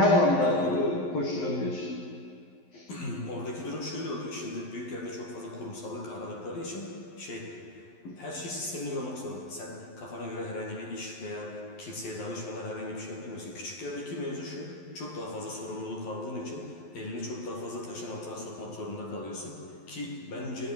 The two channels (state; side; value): late; right; 11 ms